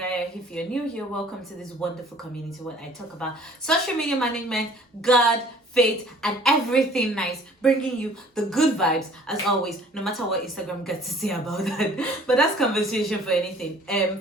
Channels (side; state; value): both; normal; correlation 0.53